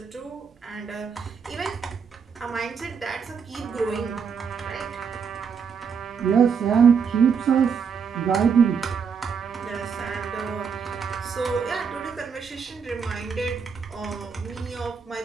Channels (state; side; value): quieter; left; 6.3 dB